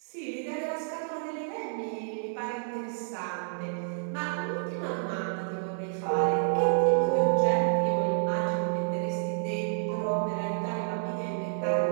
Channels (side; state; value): left; silent; digital silence